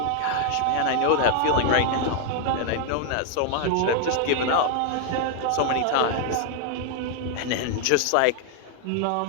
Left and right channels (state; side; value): different; both; correlation 0.00